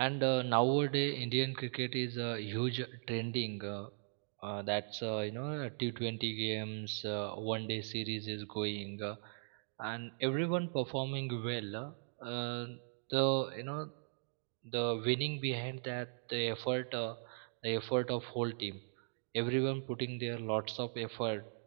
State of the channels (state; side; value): silent; left; digital silence